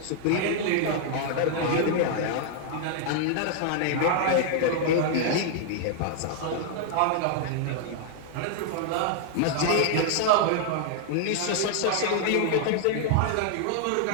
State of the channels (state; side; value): different; both; correlation 0.00